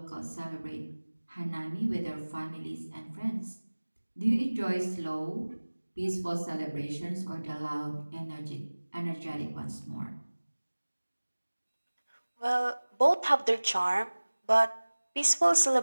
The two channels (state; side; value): inverted; both; correlation -1.00